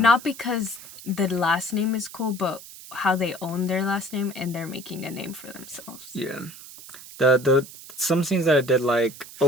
because the last name is cool, but how they own their last name and they're making a name for themselves. Yeah. The some scenes that I did like,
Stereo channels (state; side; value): noise; right; hiss, 16 dB below the sound